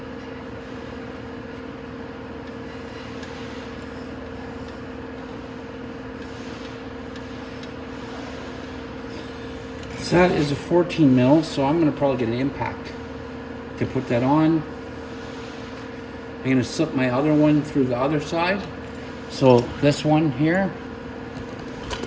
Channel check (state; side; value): identical; both; correlation 1.00